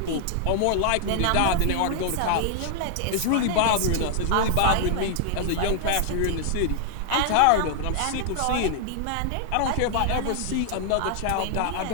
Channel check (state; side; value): different; both; correlation 0.00